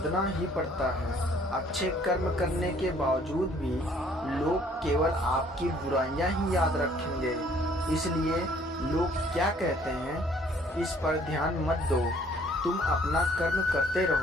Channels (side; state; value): both; normal; correlation 0.59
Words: ही पड़ता है। अच्छे कर्म करने के बावजूद भी लोग केवल आपकी बुराइयां ही याद रखेंगे। इसलिए लोग क्या कहते हैं, इस पर ध्यान मत दो। तुम अपना कर्म करते